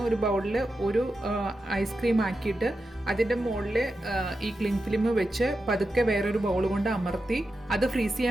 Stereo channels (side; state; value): both; normal; correlation 0.89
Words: ഒരു ബൗളിൽ ഒരു ഐസ്ക്രീം ആക്കിയിട്ട് അതിൻ്റെ മുകളിൽ ഈ ക്ലിങ് ഫിലിം വെച്ച് പതുക്കെ വേറൊരു ബൗൾ കൊണ്ട് അമർത്തി അത് ഫ്രീസ്